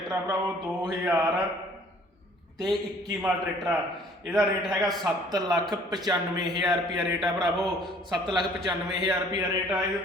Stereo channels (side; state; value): both; normal; correlation 0.56